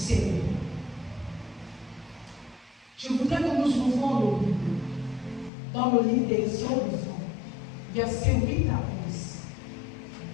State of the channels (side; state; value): right; drops out; at 5.5 s